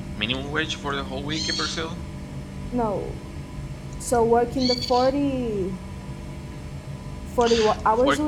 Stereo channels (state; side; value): identical; both; correlation 1.00